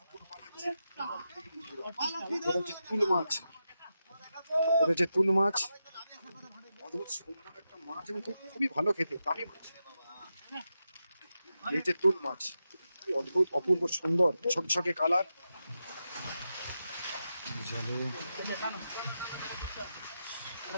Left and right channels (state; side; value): inverted; both; correlation -0.88